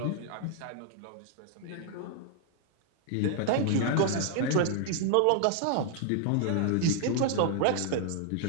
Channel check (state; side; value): different; both; correlation 0.00